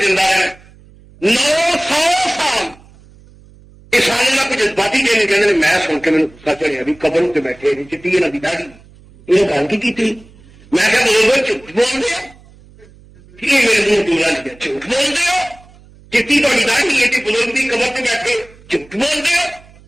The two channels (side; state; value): right; noise; hum, 25 dB below the sound